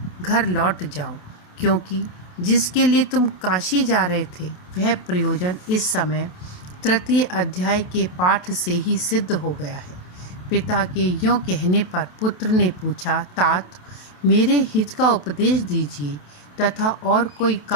घर लौट जाओ, क्योंकि जिसके लिए तुम काशी जा रहे थे वह प्रयोजन इस समय 3 अध्याय के पाठ से ही सिद्ध हो गया है। पिता के यों कहने पर पुत्र ने पूछा, तात, मेरे हित का उपदेश दीजिए तथा और कोई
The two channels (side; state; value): right; late; 28 ms